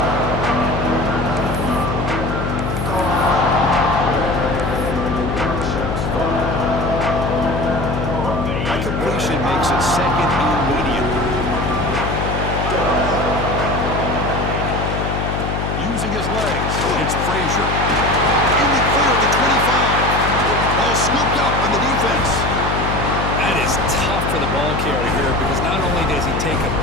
That completion makes it second and medium. Using his legs, it's Frazier. In the clear at the 25. Ball scooped up on the defense. That is tough for the ball carrier here because not only does he take a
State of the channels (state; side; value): noise; left; hum, 2 dB below the sound